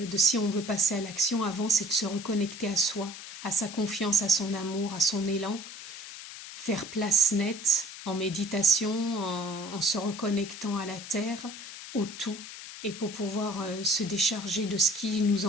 si on veut passer à l'action, avant c'est de se reconnecter à soi, à sa confiance, à son amour, à son élan, faire place nette en méditation, en se reconnectant à la terre, au tout, et pour pouvoir se décharger de ce qui nous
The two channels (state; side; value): noise; left; hiss, 12 dB below the sound